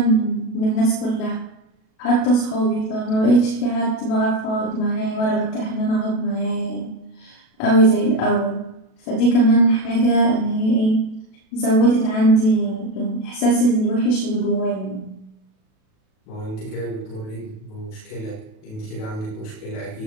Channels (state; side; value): late; right; 37 ms